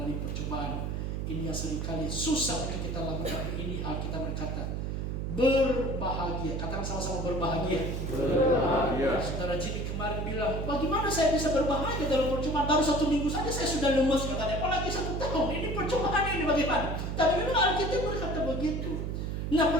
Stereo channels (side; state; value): right; noise; hum, 2 dB below the sound